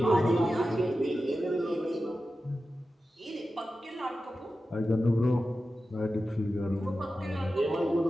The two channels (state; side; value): normal; both; correlation 0.93